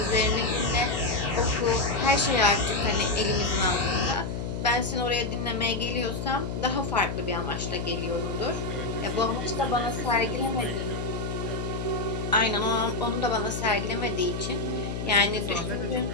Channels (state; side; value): noise; left; hum, 4 dB below the sound